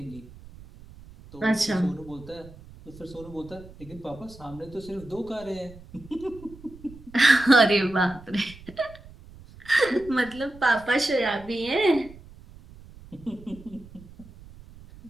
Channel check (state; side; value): noise; right; rumble, 19 dB below the sound